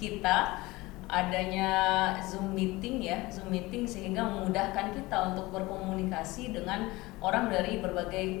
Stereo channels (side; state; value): right; quieter; 21.0 dB